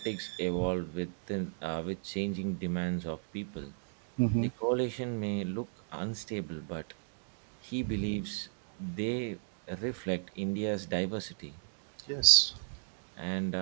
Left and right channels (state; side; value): silent; left; digital silence